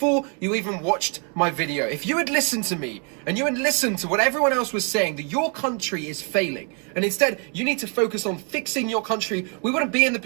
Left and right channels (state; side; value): quieter; left; 37.9 dB